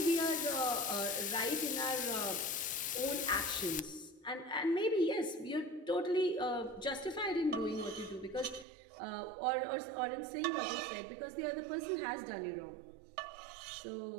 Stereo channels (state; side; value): drops out; left; at 8.7 s